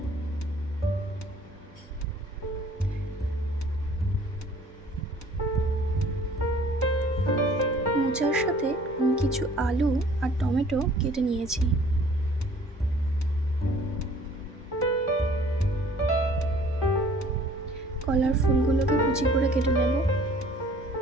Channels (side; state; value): both; normal; correlation 0.54